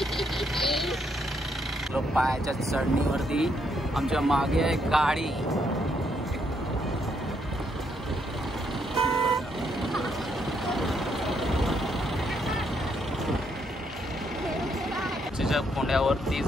पायाच्या चढणीवरती आमच्या मागे आहे गाडी. चिंचेच्या कोंड्यावरती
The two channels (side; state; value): both; normal; correlation 0.74